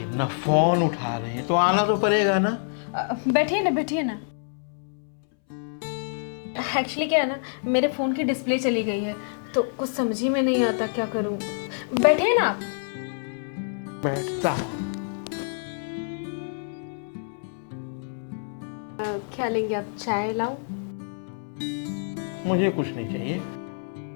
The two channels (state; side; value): silent; right; 60 dB below the other